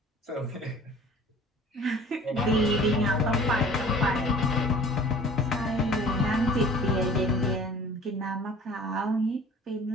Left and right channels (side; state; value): both; normal; correlation 0.47